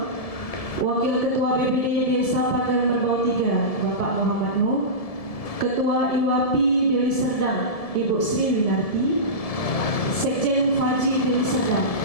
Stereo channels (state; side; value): late; right; 1.7 ms